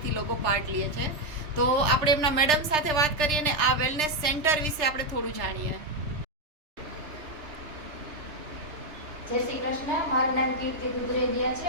લોકો પાર્ટ લે છે. તો આપણે એમના મેડમ સાથે વાત કરીએ અને આ વેલનેસ સેન્ટર વિશે આપણે થોડું જાણીએ. જય શ્રી કૃષ્ણ. મારું નામ કીર્તિ દુધરેડિયા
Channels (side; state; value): left; late; 3.3 ms